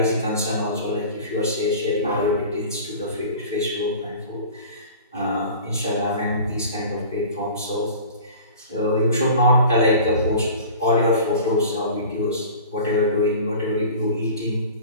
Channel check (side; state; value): both; inverted; correlation -0.41